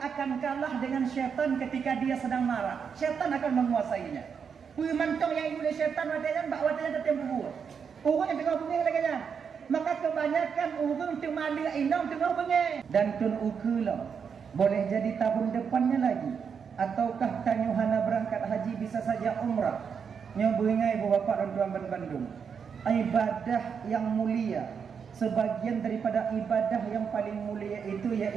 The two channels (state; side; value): quieter; left; 6.6 dB